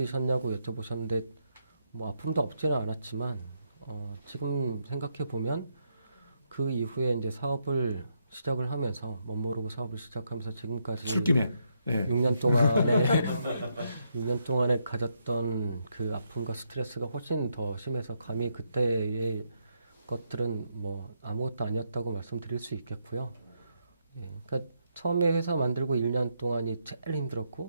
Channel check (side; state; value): both; inverted; correlation -0.78